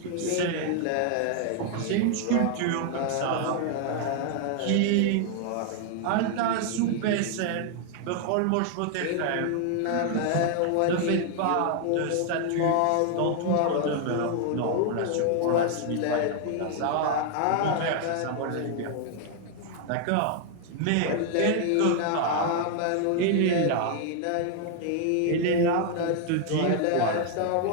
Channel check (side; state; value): both; different; correlation 0.00